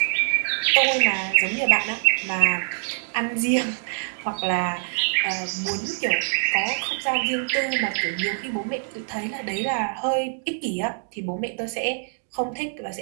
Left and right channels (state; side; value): silent; left; digital silence